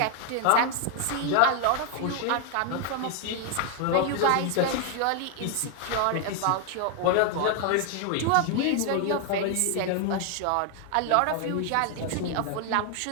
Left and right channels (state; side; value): different; both; correlation 0.00